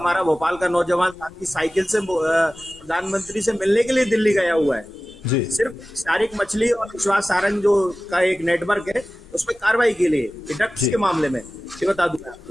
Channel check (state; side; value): normal; both; correlation 0.96